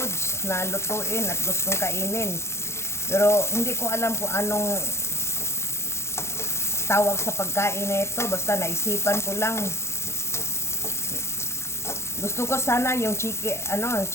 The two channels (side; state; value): right; late; 0.13 ms